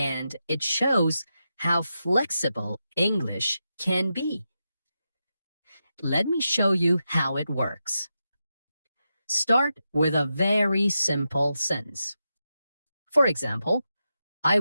it shows how flexible English can be. Let me show you how it works. Start with a very simple sentence. For example, I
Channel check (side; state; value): both; inverted; correlation -0.88